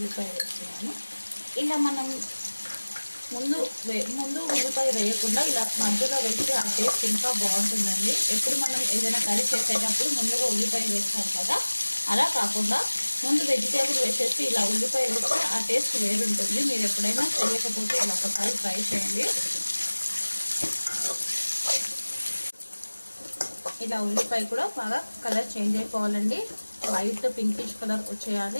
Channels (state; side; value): inverted; both; correlation -1.00